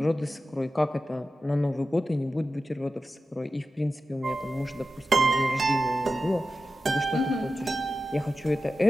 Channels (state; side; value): normal; both; correlation 0.93